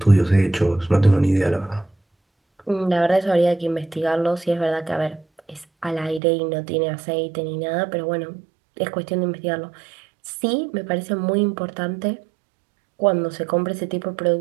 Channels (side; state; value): left; drops out; at 6.2 s